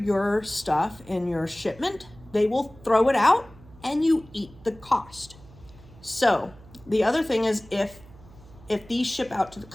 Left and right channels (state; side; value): noise; right; hum, 22 dB below the sound